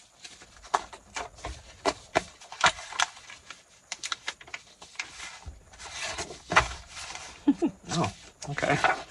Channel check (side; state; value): both; identical; correlation 1.00